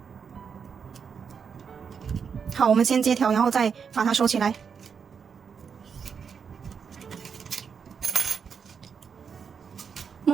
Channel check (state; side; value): quieter; left; 6.4 dB